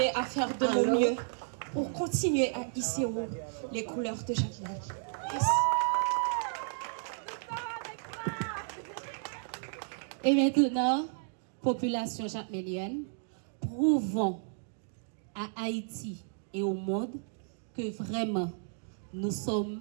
à faire de mon mieux pour continuer à hisser haut les couleurs de Jacmel. Yes. Et maintenant, population jacmélienne, prouvons à Haïti et au monde que vraiment nous sommes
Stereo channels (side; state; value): left; silent; digital silence